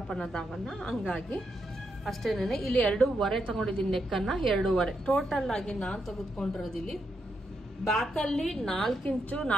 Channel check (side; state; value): both; normal; correlation 0.82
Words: ಅನ್ನೋದಾಗಲ್ಲ. ಹಂಗಾಗಿ ಅಷ್ಟೇನೆ. ಇಲ್ಲಿ 2.5 ತಗೊಂಡಿದ್ದೀನಿ ನೆಕ್ ಅನ್ನ. 2.5 ಟೋಟಲ್ ಆಗಿ ನಾನು ತೆಗೆದುಕೊಂಡಿರೋದು ಇಲ್ಲಿ ಬ್ಯಾಕ್ ಅಲ್ಲಿ 4 ಇಂಚು